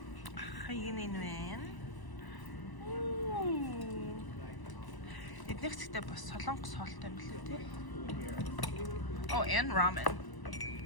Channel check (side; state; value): right; late; 1.0 ms